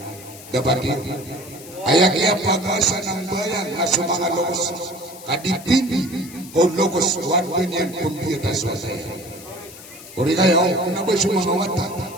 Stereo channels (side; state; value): left; noise; hiss, 17 dB below the sound